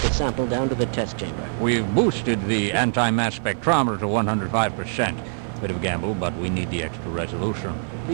the sample down to the test chamber. We've boosted the anti-mass spectrometer to 105%. Bit of a gamble, but we need the extra resolution.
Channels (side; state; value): left; silent; 60 dB below the other